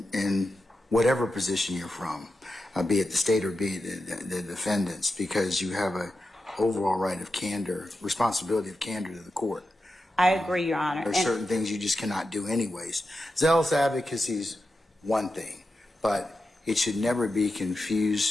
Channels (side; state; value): both; normal; correlation 0.90